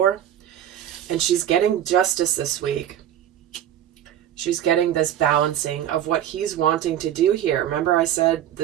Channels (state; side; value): quieter; left; 11.0 dB